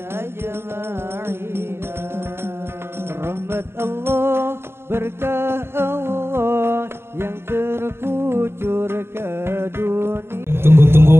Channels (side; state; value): left; late; 0.12 ms